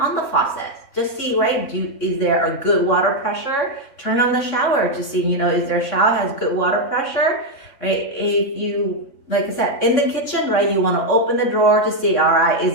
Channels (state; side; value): late; right; 3.6 ms